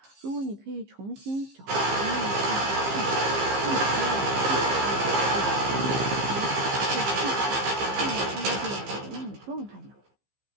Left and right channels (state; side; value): late; left; 15 ms